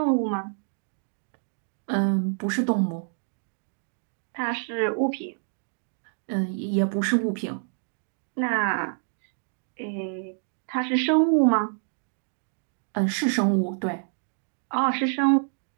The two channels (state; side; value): silent; left; digital silence